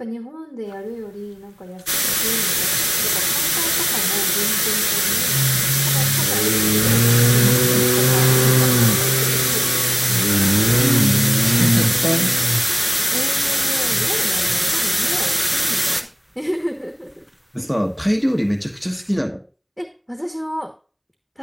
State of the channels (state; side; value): identical; both; correlation 1.00